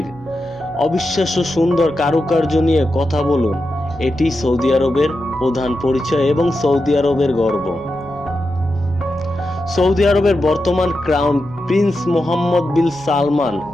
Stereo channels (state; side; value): noise; right; hum, 24 dB below the sound